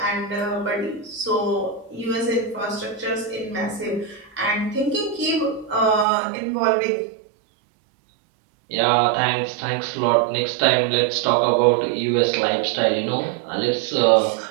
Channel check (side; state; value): left; drops out; at 6.1 s